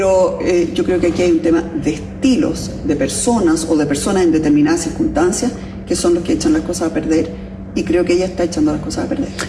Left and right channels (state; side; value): identical; both; correlation 1.00